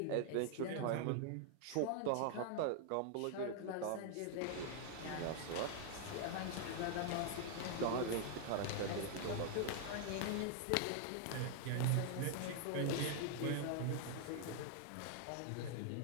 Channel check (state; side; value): different; both; correlation 0.00